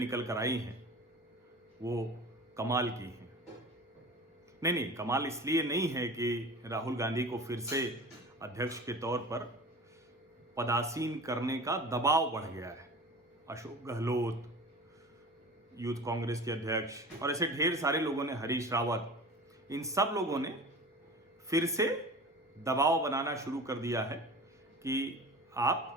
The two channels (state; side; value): normal; both; correlation 0.37